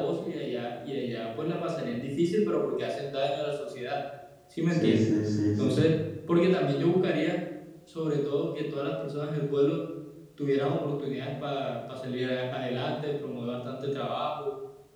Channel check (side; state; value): both; identical; correlation 1.00